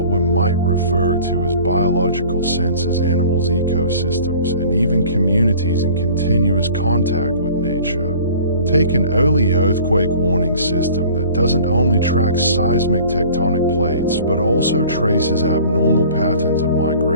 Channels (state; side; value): inverted; both; correlation -0.47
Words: we might refer to as biological sensors, animals, ecosystems, and even communities in continuous contact with nature. Take an early earthquake warning system that doesn't only track seismic tectonic plates but also traces abnormal patterns of